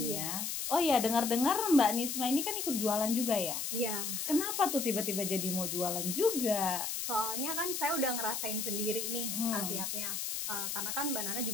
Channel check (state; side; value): noise; left; hiss, 3 dB below the sound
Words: Iya. ya. Oh iya, dengar-dengar Mbak Nisma ini kan ikut jualan juga ya? Iya. Kenapa tuh tiba-tiba jadi mau jualan juga? Soalnya kan saya udah ngerasain sendiri nih khasiatnya. Karena kan Mbak Nana